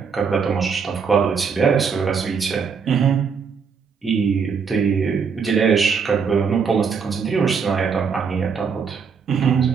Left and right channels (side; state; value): left; quieter; 6.0 dB